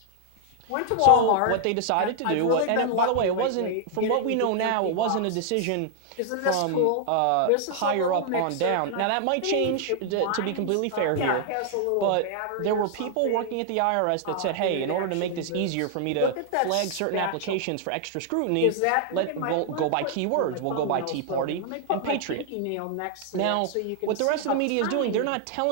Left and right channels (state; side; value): different; both; correlation 0.00